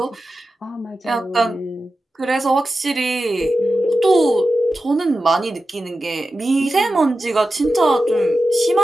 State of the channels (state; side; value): normal; both; correlation 0.92